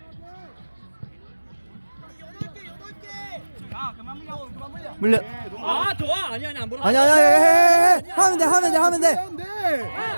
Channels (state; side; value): inverted; both; correlation -1.00